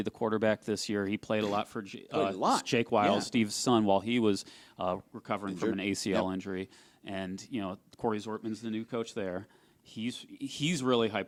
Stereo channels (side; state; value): both; identical; correlation 1.00